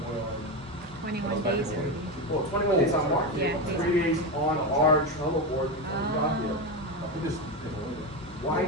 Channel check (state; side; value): normal; both; correlation 0.15